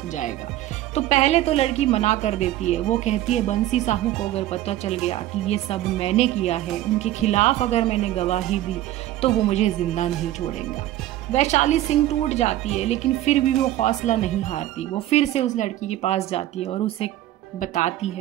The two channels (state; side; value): quieter; left; 14.4 dB